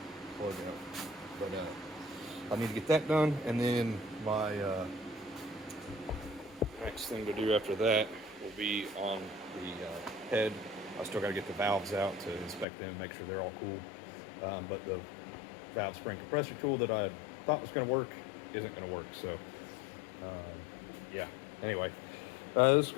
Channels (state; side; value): drops out; right; at 12.7 s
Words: plug out, but I need to get that done, and then my next thing to do after that will be on the head. I still got to get the valves out to inspect them, make sure they're all cool. But the valve spring compressor tool that I thought was going to work isn't going to work. So, yeah. Anyway, this is